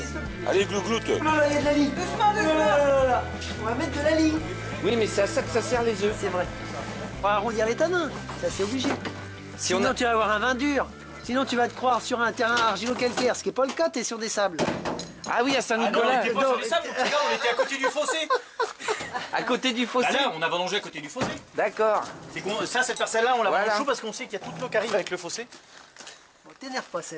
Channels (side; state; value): both; identical; correlation 1.00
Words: Allez, glougloute. Oh là là, il y a de la ligne. Doucement, doucement. Là. On va mettre de la ligne. Oui, mais c'est à ça que ça sert les œufs. C'est vrai. On va arrondir les tanins. Ça, c'est obligé. Si on Sinon, a... tu vas avoir un vin dur. Sinon, tu vas te croire sur un terrain argilo-calcaire, ce qui n'est pas le cas, tu es sur des sables. Ah oui, à Saint-Nicolas, on était pas sur les sables, regarde, on était à côté du fossé. à côté du fossé. Bah là, on a vendangé à côté du fossé. D'accord. C'est ça, cette parcelle-là, on la Voilà. vend chaud parce qu'on sait qu'il y a toute l'eau qui arrive avec le fossé. Bon, t'énerve pas,